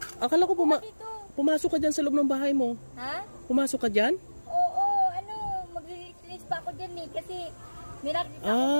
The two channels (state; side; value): inverted; both; correlation -1.00